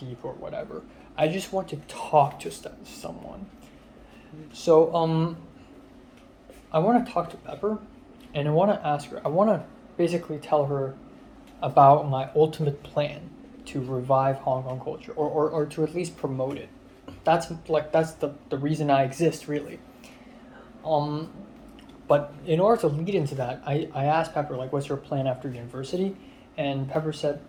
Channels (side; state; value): both; identical; correlation 1.00